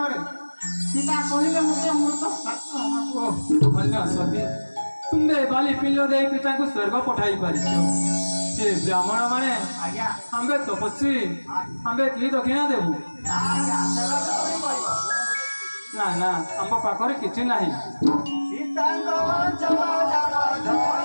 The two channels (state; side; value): inverted; both; correlation -1.00